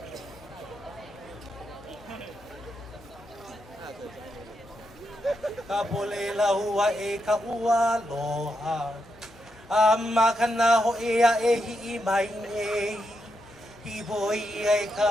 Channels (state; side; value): normal; both; correlation 0.83